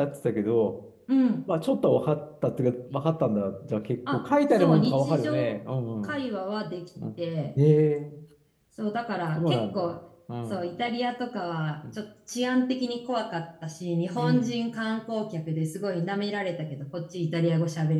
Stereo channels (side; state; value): both; identical; correlation 1.00